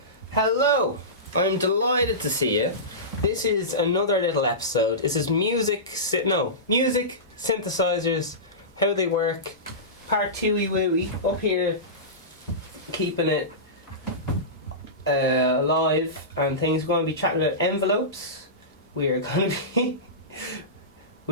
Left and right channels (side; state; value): both; normal; correlation -0.20